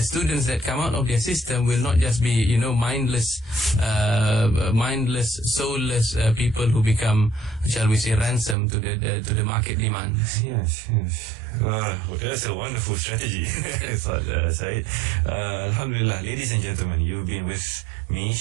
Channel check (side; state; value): left; drops out; at 8.6 s